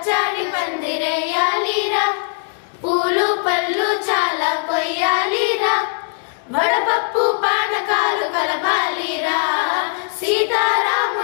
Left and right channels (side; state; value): right; silent; digital silence